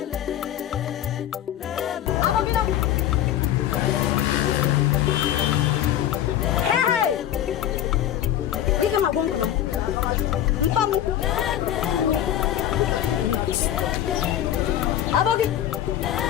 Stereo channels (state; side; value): quieter; right; 11.5 dB